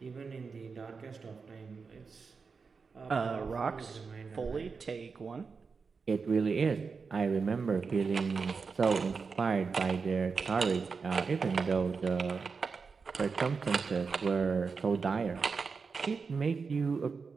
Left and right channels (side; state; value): left; quieter; 5.0 dB